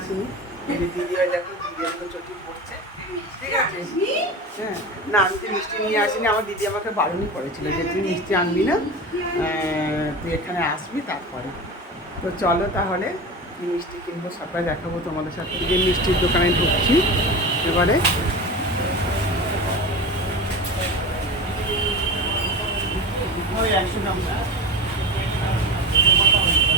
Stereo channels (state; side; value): normal; both; correlation 0.28